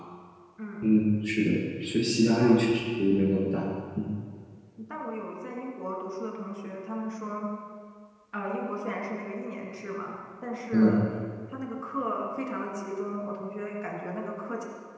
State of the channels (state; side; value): identical; both; correlation 1.00